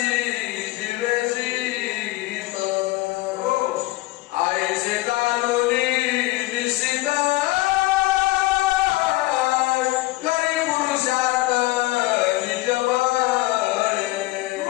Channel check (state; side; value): quieter; right; 19.6 dB